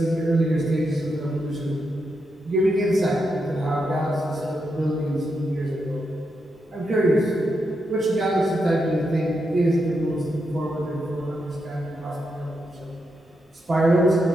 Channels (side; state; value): both; normal; correlation 0.84